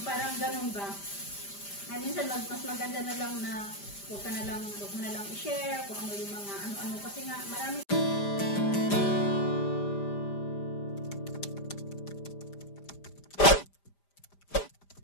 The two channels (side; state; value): right; late; 5.0 ms